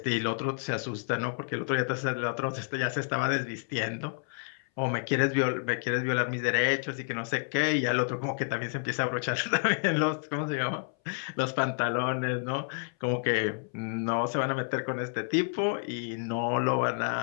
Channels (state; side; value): silent; right; 58 dB below the other